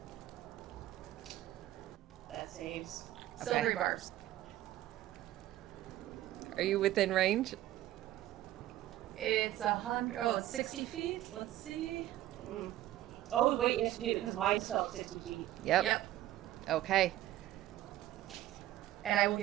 That saves. Silvery Okay. bars. Are you within range? It's 100. Oh, it's 60 feet. Let's see. Mm. Oh wait, yes you do, because mine's still 60 feet. Yep. Okay. And I will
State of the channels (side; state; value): left; quieter; 14.4 dB